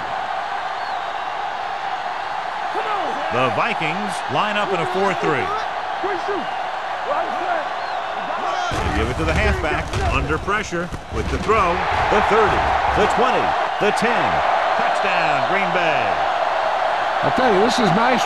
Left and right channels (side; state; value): both; identical; correlation 1.00